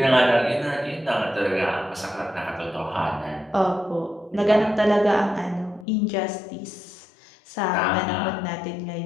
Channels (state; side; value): drops out; right; at 5.9 s